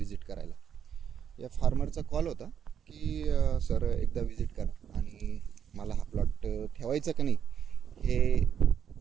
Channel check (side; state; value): left; quieter; 8.3 dB